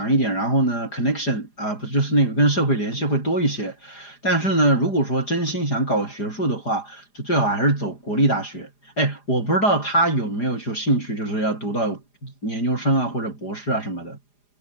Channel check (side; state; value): right; late; 4.9 ms